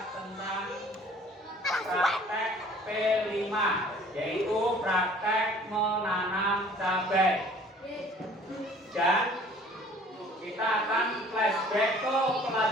tentang praktek P5, yaitu praktek menanam cabai. Dan kita akan flashback ke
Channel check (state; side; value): normal; both; correlation 0.52